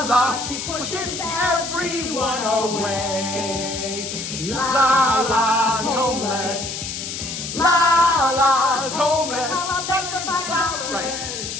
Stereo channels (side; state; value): left; noise; hiss, 6 dB below the sound